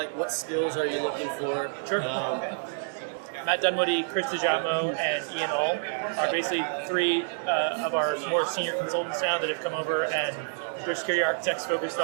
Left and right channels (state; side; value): silent; left; digital silence